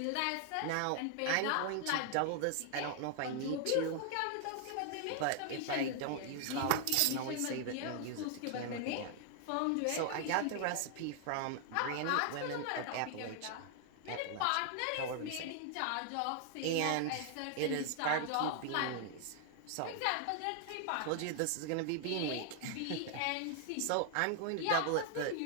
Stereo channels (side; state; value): both; different; correlation 0.00